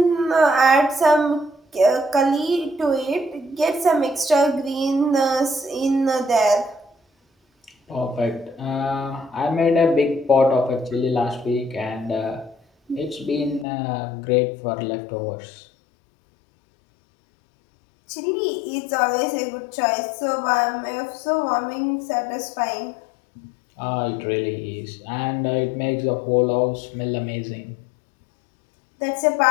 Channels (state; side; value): drops out; right; at 13.7 s